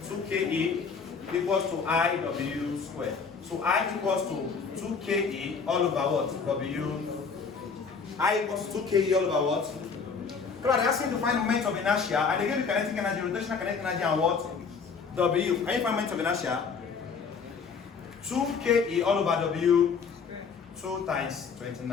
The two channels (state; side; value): quieter; right; 5.5 dB